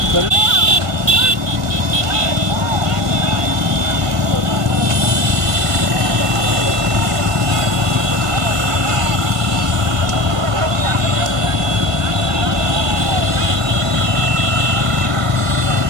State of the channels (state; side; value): late; left; 1.6 ms